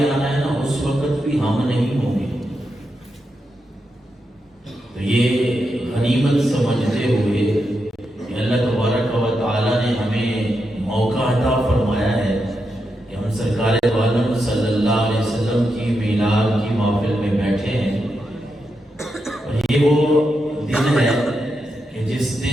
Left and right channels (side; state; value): both; normal; correlation 0.85